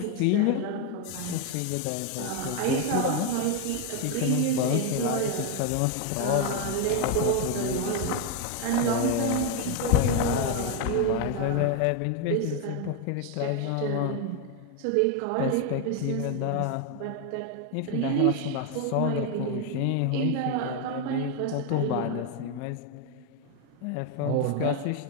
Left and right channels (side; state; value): both; different; correlation 0.01